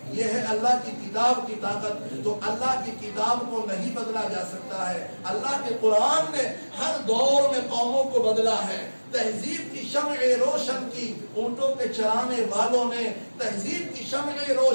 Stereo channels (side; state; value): both; inverted; correlation -1.00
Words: یہ ہے اللہ کی کتاب کی طاقت۔ تو اللہ کی کتاب کو نہیں بدلا جا سکتا ہے۔ اللہ کے قرآن نے ہر دور میں قوموں کو بدلا ہے۔ تہذیب کی شمع روشن کی اونٹوں کے چرانے والوں نے، تہذیب کی شمع